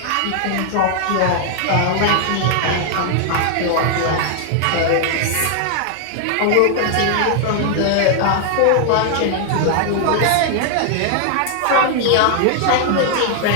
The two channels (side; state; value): both; different; correlation 0.00